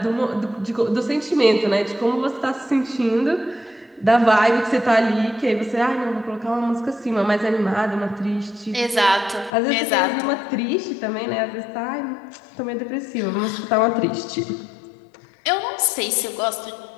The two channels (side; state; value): right; drops out; at 9.5 s